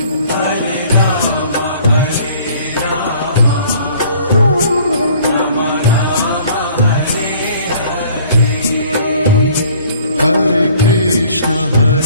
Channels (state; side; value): inverted; both; correlation -0.54